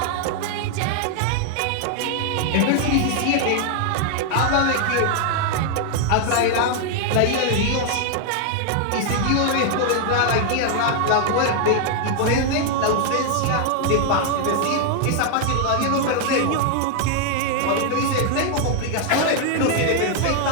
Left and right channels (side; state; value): both; different; correlation 0.00